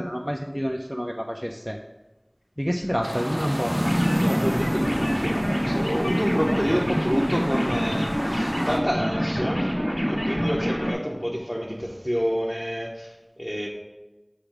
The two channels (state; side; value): identical; both; correlation 1.00